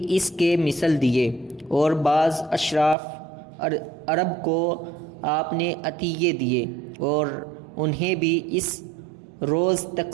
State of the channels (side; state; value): left; drops out; at 3.0 s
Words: اس کے مثل دیے، اور بعض اشراف عرب کو آپ نے عطیے دیے اور انہیں بھی اس روز